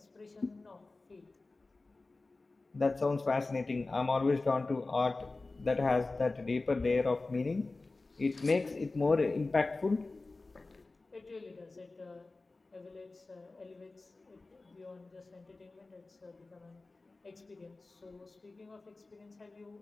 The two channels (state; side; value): quieter; right; 3.4 dB